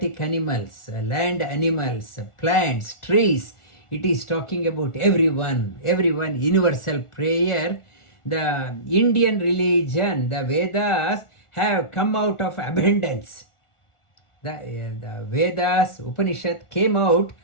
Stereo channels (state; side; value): late; right; 1.4 ms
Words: animals, land animals, plants, trees. It is talking about everyone, universal prayer. The Indian religion, the Vedas, have come out of abundance. The Vedas, Upanishad came out